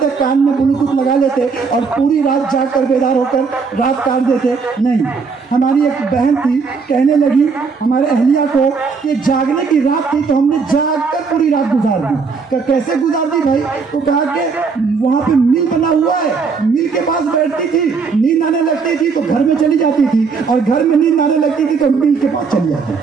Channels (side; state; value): left; quieter; 5.1 dB